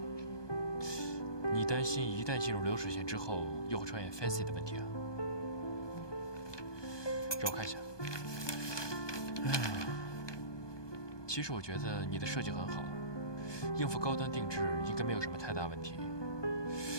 你擔心一旦進入流水線之後，又會出現 fancy 的問題啊？讓我看一下。其實我覺得你的設計很好，應付高端定制應該沒有什麼太大問題。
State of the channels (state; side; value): late; right; 1.2 ms